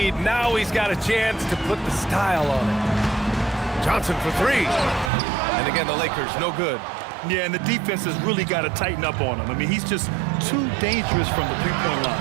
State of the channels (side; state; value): left; drops out; at 5.1 s